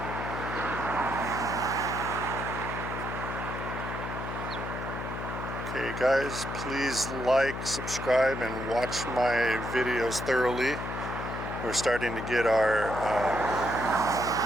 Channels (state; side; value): noise; left; hum, 6 dB below the sound